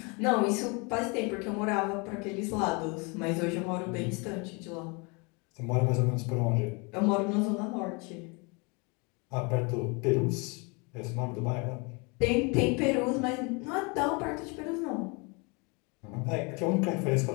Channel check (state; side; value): quieter; right; 30.5 dB